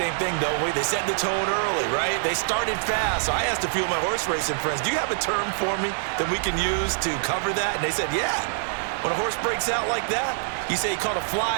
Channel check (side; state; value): left; silent; 59 dB below the other